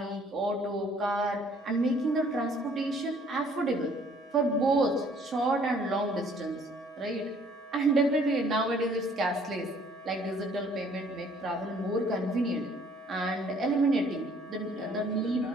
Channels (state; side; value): normal; both; correlation 0.59